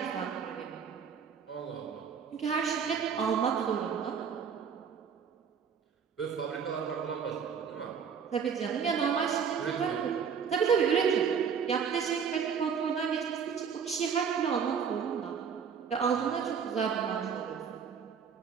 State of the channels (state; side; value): quieter; left; 6.9 dB